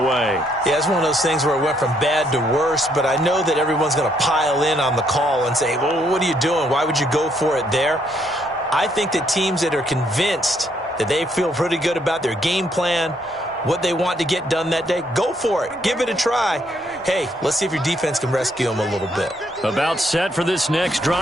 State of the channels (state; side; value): normal; both; correlation 0.71